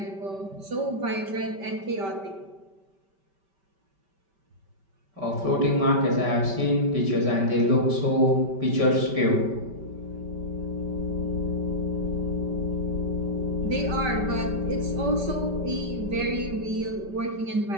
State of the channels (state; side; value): late; left; 5.2 ms